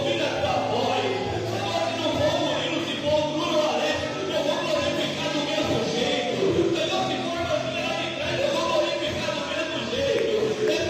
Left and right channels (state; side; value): identical; both; correlation 1.00